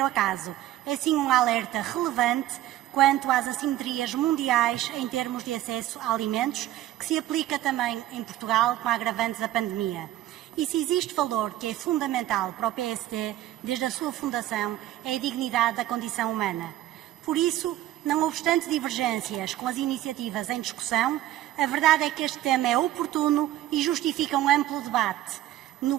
acaso. É sim um alerta relevante quanto às assimetrias mundiais em termos de acesso a alimentos, que se aplica também em Portugal com a agravante da pandemia. E se existe valor que é fundamental para o PSD desde a sua fundação, é a dignidade da condição humana. Por isso, não obstante divergências com as iniciativas em discussão, a verdade é que este tema é oportuno e justifica um amplo debate, no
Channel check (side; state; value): left; quieter; 13.8 dB